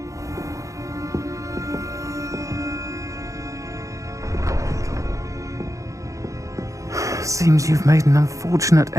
Seems you've made an unfortunate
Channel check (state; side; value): late; left; 0.16 ms